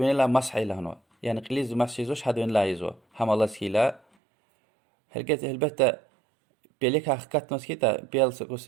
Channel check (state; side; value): drops out; left; at 4.0 s